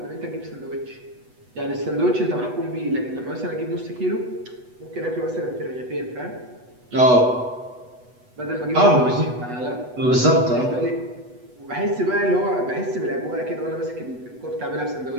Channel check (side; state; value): left; late; 8.1 ms